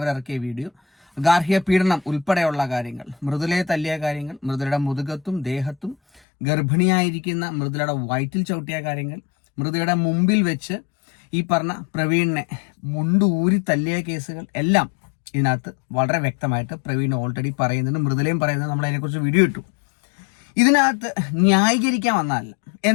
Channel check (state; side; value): drops out; right; at 6.2 s